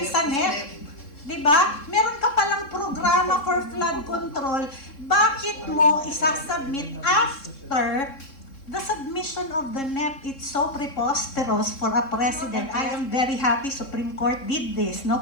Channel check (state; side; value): late; right; 3.7 ms